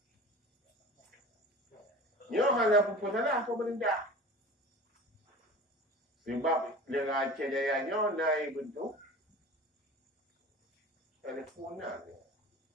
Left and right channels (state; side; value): normal; both; correlation 0.38